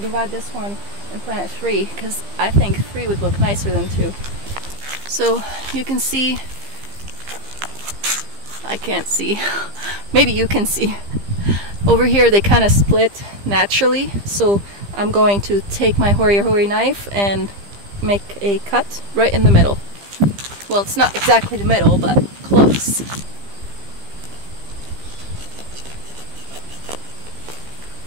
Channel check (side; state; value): left; late; 15 ms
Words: this one and plant 3, because I think 3 would look nicer than 2. So you can see, I can't see, maybe you can see. Over here they kind of split naturally, so I'm going to take my hoary knife and make a cut right in the middle. Well, it's not exactly the middle, but close.